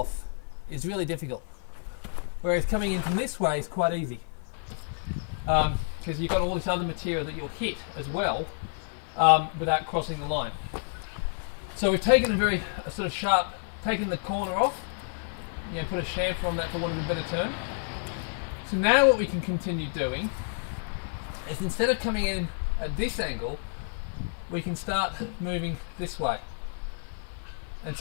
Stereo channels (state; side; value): silent; right; 57 dB below the other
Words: is really difficult. Whereas coming in from this way is quite easy. Because you've got all this other material that you'll hit as well without crossing the line. So we've taken a sort of sharp, taken the corner off, you know, put a chamfer on that for want of a better term. So now what we can continue doing is, instead of coming in at this angle, we can start moving this way. And